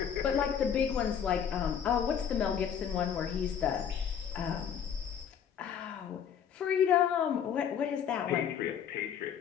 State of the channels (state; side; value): quieter; right; 8.2 dB